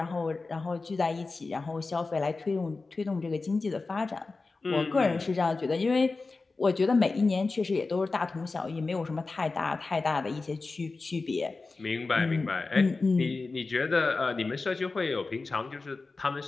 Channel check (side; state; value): right; quieter; 3.8 dB